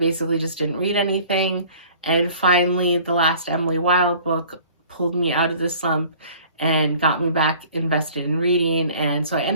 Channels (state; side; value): inverted; both; correlation -0.50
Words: just didn't read anything, and finally the last Emily Wilde book pulled me out of the slump and got me back invested in reading. And so I